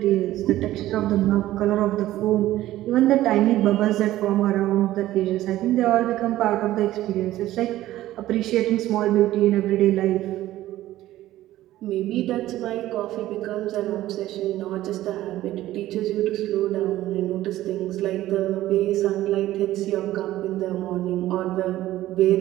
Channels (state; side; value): quieter; left; 14.8 dB